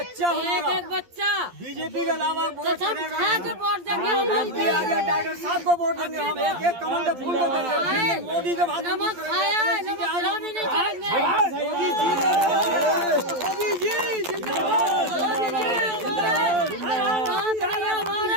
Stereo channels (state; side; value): late; left; 12 ms